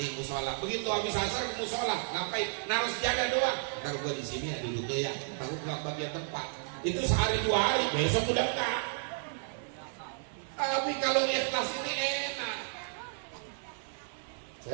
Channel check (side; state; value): left; silent; digital silence